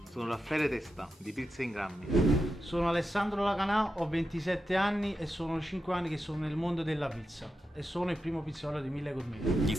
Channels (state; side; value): normal; both; correlation 0.88